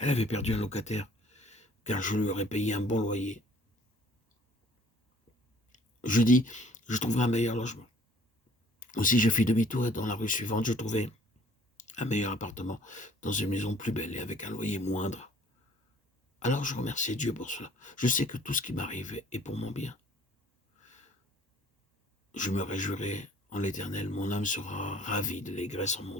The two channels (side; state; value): both; normal; correlation 0.55